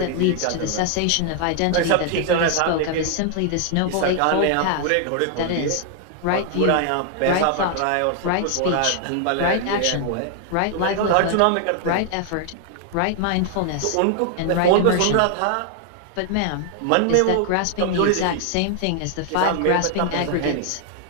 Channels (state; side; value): different; both; correlation 0.00